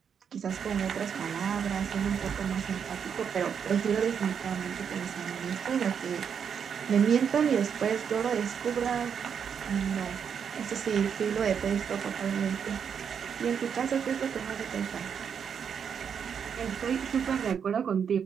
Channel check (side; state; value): left; quieter; 7.3 dB